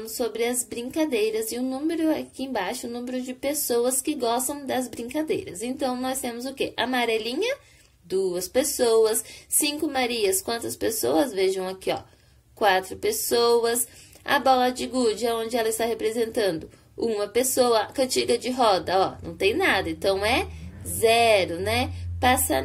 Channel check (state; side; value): identical; both; correlation 1.00